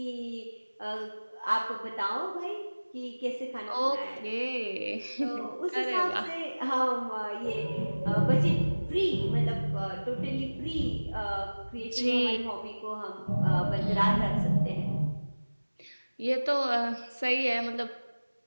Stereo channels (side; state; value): both; inverted; correlation -1.00